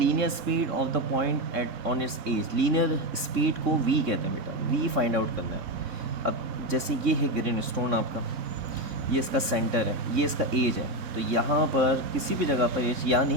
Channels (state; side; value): late; left; 3.6 ms